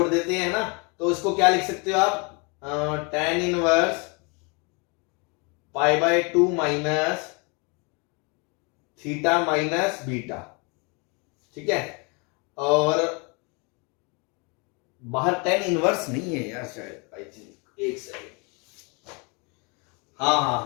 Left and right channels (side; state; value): right; quieter; 31.6 dB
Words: देते हैं ना. तो इसको क्या लिख सकते हो आप, tan inverse pi by 2 minus theta minus beta. ठीक है, और बाहर tan इनवर्स नहीं है यार शायद, आई थिंक. एक सेकंड.